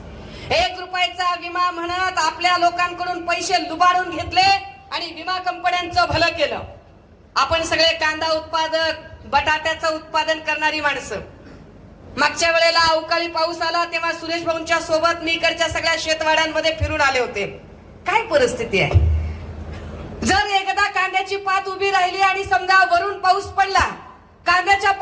1 रुपयाचा विमा म्हणत आपल्या लोकांकडून पैसे लुबाडून घेतले आणि विमा कंपन्यांचं भलं केलं. आपण सगळे कांदा उत्पादक, बटाट्याचं उत्पादन करणारी माणसं. मागच्या वेळेला अवकाळी पाऊस आला तेव्हा सुरेश भाऊंच्या सोबत मी इकडच्या सगळ्या शेतवाड्यांमध्ये फिरून आले होते. काय परिस्थिती आहे? जर एकदा कांद्याची पात उभी राहिली आणि समजा वरून पाऊस पडला, कांद्याच्या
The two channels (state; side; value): identical; both; correlation 1.00